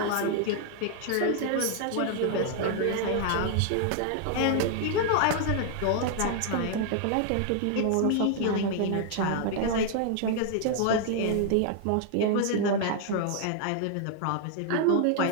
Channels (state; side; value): different; both; correlation 0.00